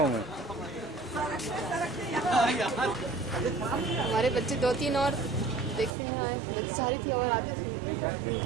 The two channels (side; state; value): left; drops out; at 6.0 s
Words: मैं। हमारे बच्चे 2-3 और देखते हैं आए, बच्चे सारी थी और आते सुनते